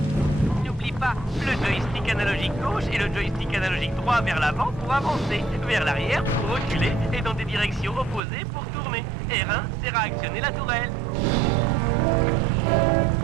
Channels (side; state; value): left; drops out; at 8.2 s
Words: N'oublie pas, le joystick analogique gauche et le joystick analogique droit vers l'avant pour avancer, vers l'arrière pour reculer et dans des directions opposées pour tourner. R1 sert à actionner la tourelle.